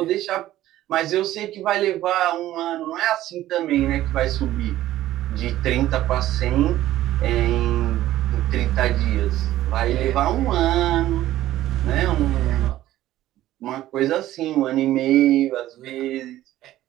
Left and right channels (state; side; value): quieter; left; 14.3 dB